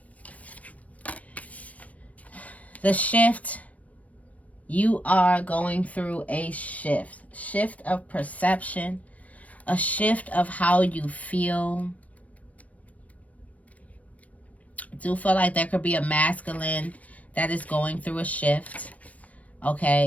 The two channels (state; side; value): late; right; 0.068 ms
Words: The shift. You are going through a shift. Shift of perception. A shift of how you feel. I do feel like there could be a masculine that is going through a shift.